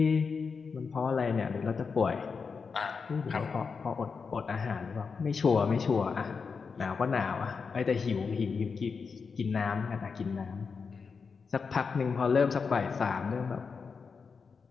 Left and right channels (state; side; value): quieter; right; 5.3 dB